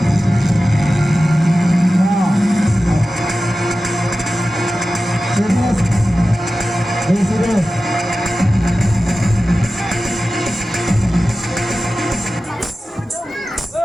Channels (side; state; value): both; normal; correlation 0.94